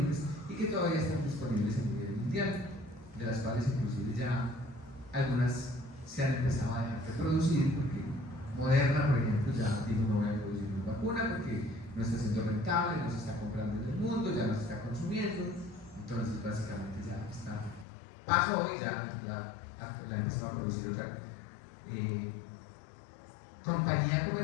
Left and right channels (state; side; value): drops out; right; at 17.9 s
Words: y que todavía están disponibles a nivel mundial, de las cuales inclusive ya algunas se han empezado a dejar de producir, porque Moderna, por ejemplo, ya dijo no voy a producir una vacuna porque no está siendo rentable, no se está comprando en el mundo, ya no se está consumiendo, entonces básicamente ya está, pasó y ya la empezó a producir otra compañía